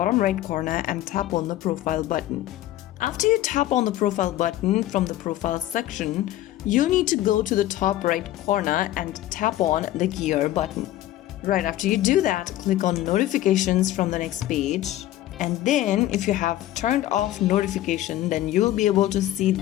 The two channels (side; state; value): right; quieter; 14.1 dB